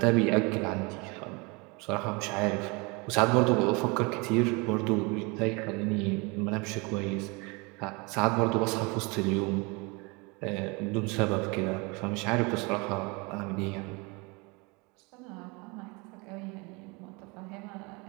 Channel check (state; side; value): quieter; left; 28.1 dB